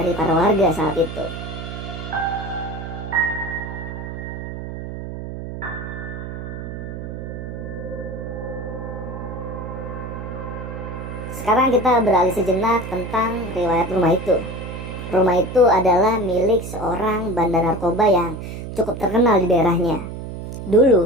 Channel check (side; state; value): right; noise; hum, 8 dB below the sound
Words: para warga saat itu. Sekarang kita beralih sejenak tentang riwayat rumah itu. Rumah itu adalah milik seorang bandar narkoba yang cukup terkenal di daerahnya.